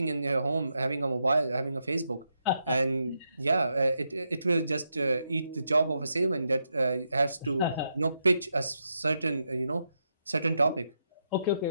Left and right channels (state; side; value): inverted; both; correlation -0.83